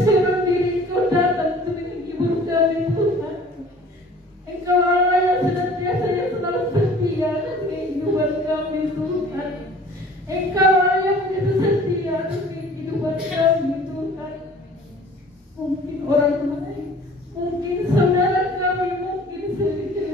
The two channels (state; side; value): normal; both; correlation 0.49